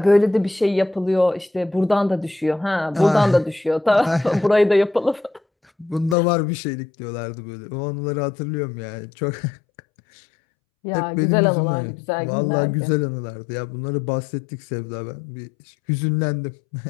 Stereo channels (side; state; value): right; drops out; at 6.2 s